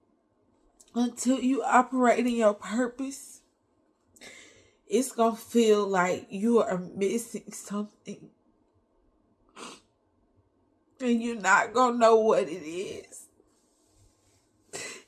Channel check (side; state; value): both; identical; correlation 1.00